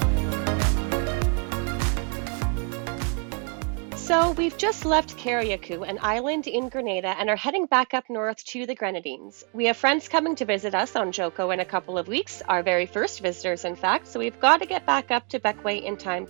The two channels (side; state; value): left; quieter; 37.8 dB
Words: So we've just left Carriacou, an island in Grenada, and are heading back up north to the Grenadines. We have friends coming to visit us on Joko in a couple of weeks, our very first visitors in fact, so we've got to get back up to Bequia in time